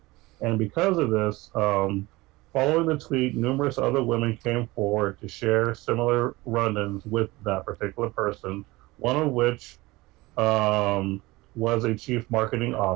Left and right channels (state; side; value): quieter; left; 20.9 dB